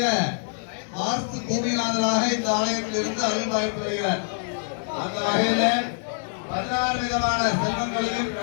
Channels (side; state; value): right; silent; digital silence